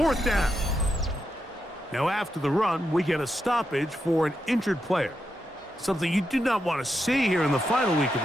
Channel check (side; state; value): both; normal; correlation 0.85